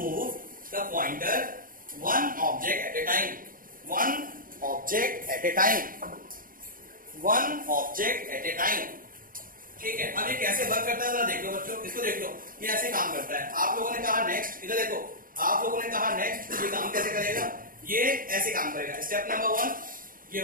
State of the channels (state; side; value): late; left; 0.41 ms